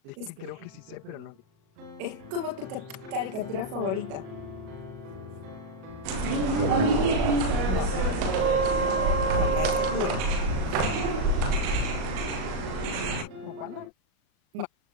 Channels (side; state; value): left; late; 37 ms